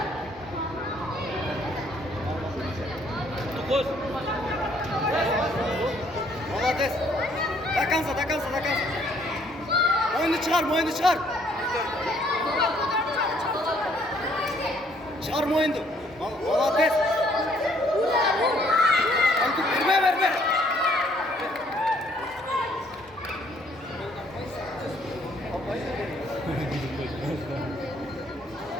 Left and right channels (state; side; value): normal; both; correlation 0.64